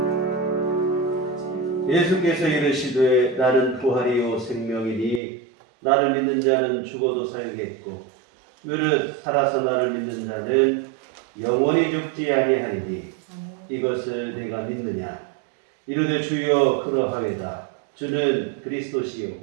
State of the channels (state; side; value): drops out; left; at 5.2 s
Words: 예수께서 이르시되 나는 부활이요 생명이니 나를 믿는 자는 죽어도 살겠고 무릇 살아서 나를 믿는 자는 영원히 죽지 아니하리니 이것을 내가 믿느냐. 이르되 주여 그러하외다. 주는 그리스도시요